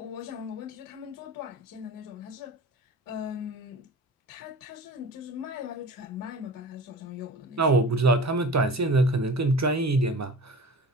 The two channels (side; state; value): both; normal; correlation 0.38